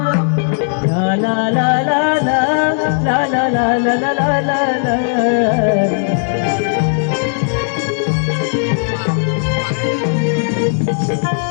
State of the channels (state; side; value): silent; right; digital silence